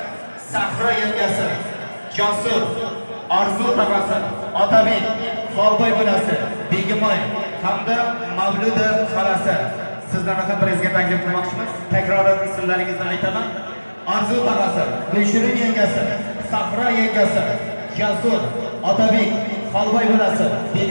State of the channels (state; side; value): inverted; both; correlation -1.00